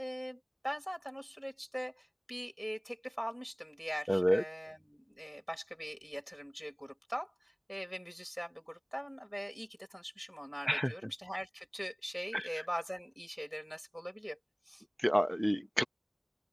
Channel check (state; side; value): identical; both; correlation 1.00